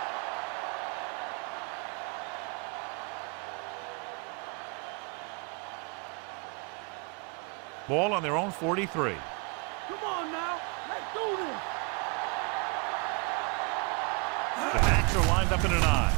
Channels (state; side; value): quieter; left; 33.5 dB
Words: Ball on their own 43. Come on now. Let's do this. The backs are lined up in an I.